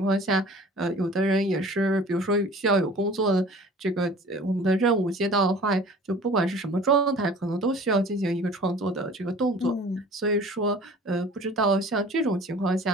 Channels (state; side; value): normal; both; correlation 0.46